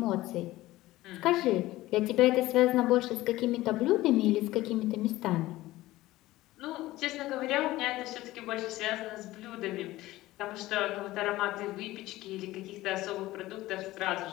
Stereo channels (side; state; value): right; quieter; 17.2 dB